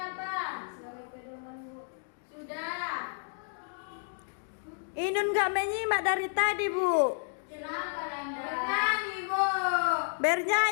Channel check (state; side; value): silent; right; digital silence